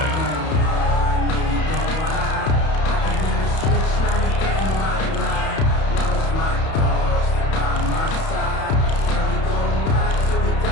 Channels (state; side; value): late; right; 31 ms